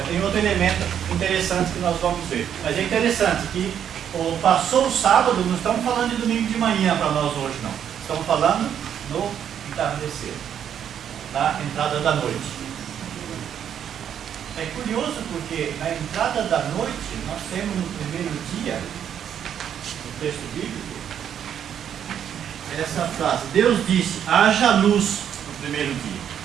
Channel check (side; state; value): left; quieter; 9.1 dB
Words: tem outro elemento interessante que nós vamos ver. Mas é interessante que passou o sábado, não estamos falando de domingo de manhã para nós hoje, não. Estamos falando no entardecer. Da entrada da noite. É curioso porque na entrada da noite nós temos no primeiro dia, no texto bíblico, essa frase: Deus disse, haja luz no primeiro dia.